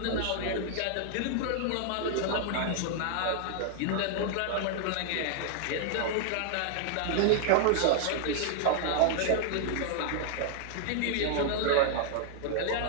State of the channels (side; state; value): both; different; correlation -0.01